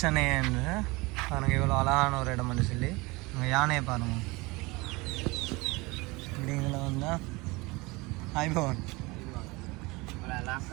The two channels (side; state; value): left; quieter; 24.2 dB